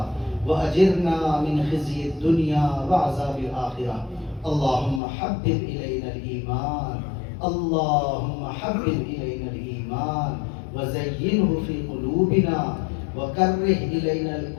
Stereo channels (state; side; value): drops out; right; at 5.0 s